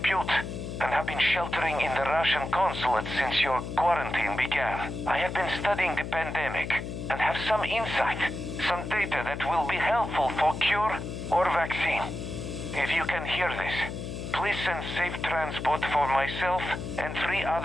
and have been sheltering in the Russian consulate since your quarantine began. I have been studying the pandemic and have some insight, some data that will be helpful for cure or vaccine. If you can hear this, please send safe transport for myself and 3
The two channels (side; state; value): left; noise; hum, 7 dB below the sound